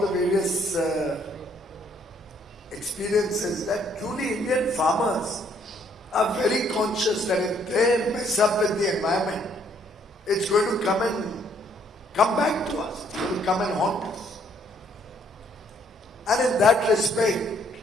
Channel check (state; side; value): normal; both; correlation 0.66